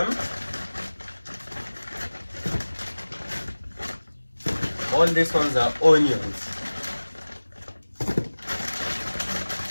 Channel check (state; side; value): inverted; both; correlation -1.00